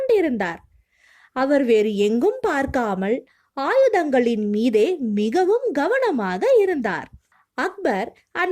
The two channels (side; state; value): both; identical; correlation 1.00